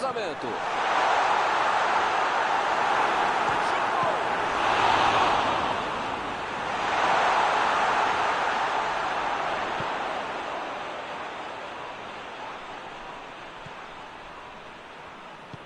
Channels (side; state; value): both; identical; correlation 1.00